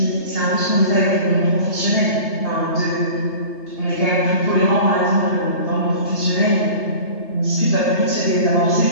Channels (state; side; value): late; right; 3.3 ms